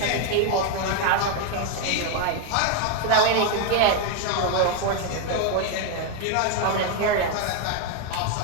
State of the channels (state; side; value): different; both; correlation 0.01